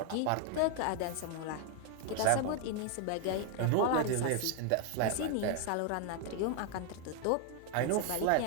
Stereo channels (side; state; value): both; different; correlation 0.01